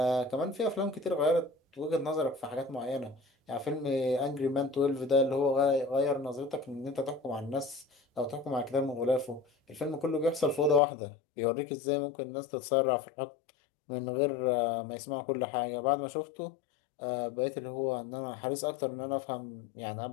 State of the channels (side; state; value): right; drops out; at 10.8 s